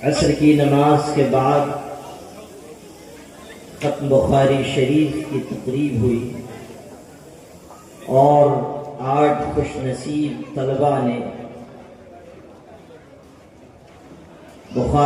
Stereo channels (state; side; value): identical; both; correlation 1.00